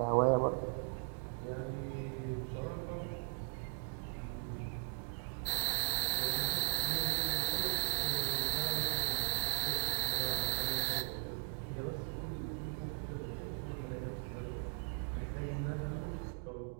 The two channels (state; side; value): silent; left; 52 dB below the other